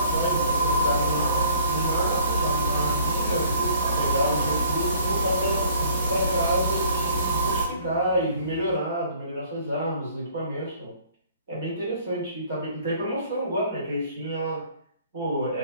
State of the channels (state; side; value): inverted; both; correlation -0.56